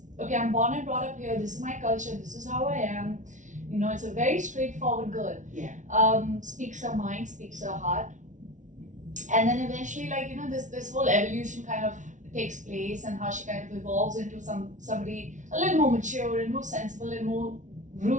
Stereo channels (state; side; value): late; left; 0.37 ms